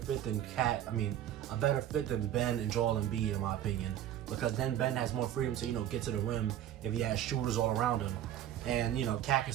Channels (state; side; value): quieter; left; 11.4 dB